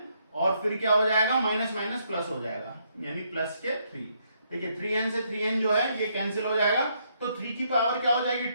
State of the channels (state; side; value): inverted; both; correlation -0.73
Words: और फिर क्या हो जाएगा माइनस माइनस प्लस हो जाएगा यानी प्लस के 3। देखिए 3n से 3n जो है ये कैंसिल हो जाएगा तो 3 की पावर क्या हो जाएगी